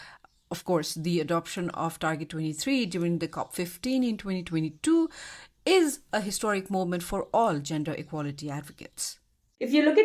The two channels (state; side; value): identical; both; correlation 1.00